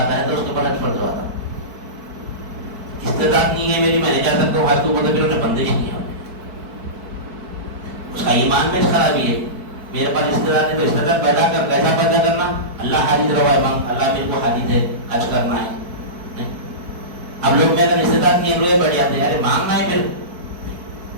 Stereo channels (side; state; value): left; late; 4.6 ms